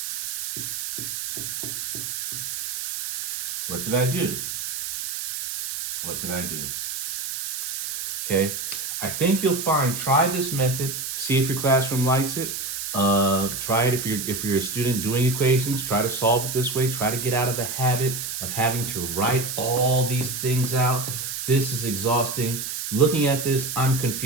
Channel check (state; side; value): noise; right; hiss, 4 dB below the sound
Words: What did I do? What did I do? Okay, I think you'll find, try this method, see if your classroom likes it. Try it if you're a student doing equations. Try to solve it this way. Try to get out of the habit of having to write all these things out. This is exhausting. Looking at this, I'm